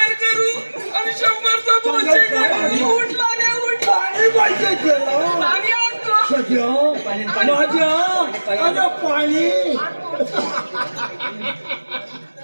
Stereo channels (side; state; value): both; inverted; correlation -1.00